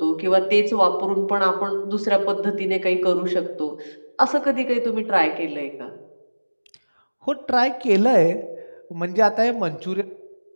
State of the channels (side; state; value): both; inverted; correlation -1.00